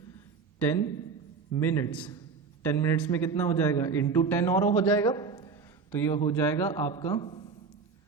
10 minutes, 10 minutes में कितना हो जाएगा इंटू 10 और हो जाएगा, तो ये हो जाएगा आपका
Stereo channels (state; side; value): quieter; left; 5.2 dB